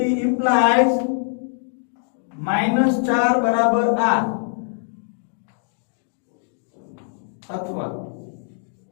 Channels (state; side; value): silent; right; digital silence